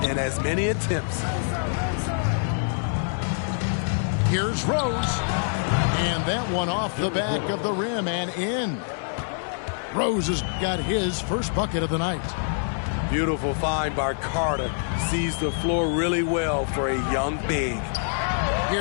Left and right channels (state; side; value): silent; right; digital silence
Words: and as many attempts. Here's Rose. And that one off the back of the rim and in. Rose has got his first bucket of the night. Beautiful find by Carter. Sees the floor really well for a young big.